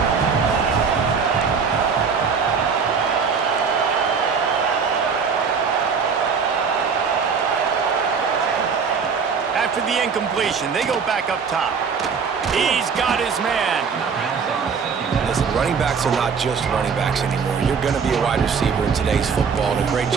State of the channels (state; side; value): quieter; left; 5.9 dB